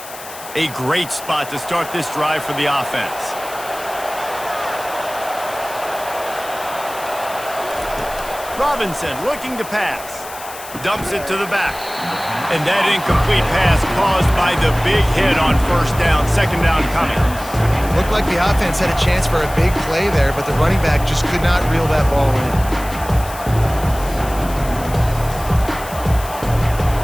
A great spot to start this drive for the offense. Robinson looking to pass. Dumps it to the back. And that incomplete pass caused by the big hit on 1st down. 2nd down coming. Looked like the offense had a chance for a big play there, but the running back just could not reel that ball in.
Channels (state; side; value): noise; left; hiss, 14 dB below the sound